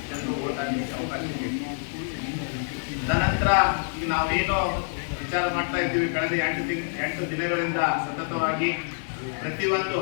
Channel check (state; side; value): silent; right; digital silence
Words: ಜನರು ಓಟ್ ಹಾಕಲಿಕ್ಕೆ ಅವಕಾಶ ಇದೆ. ತದನಂತರ ಈಗ ನಾವೇನೋ ವಿಚಾರ ಮಾಡ್ತಾ ಇದ್ದೀವಿ, ಕಳೆದ 8 ದಿನಗಳಿಂದ ಸತತವಾಗಿ ಪ್ರತಿಯೊಂದು